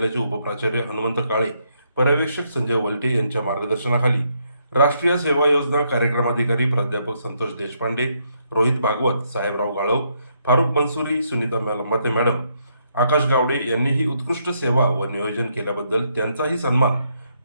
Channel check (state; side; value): inverted; both; correlation -0.75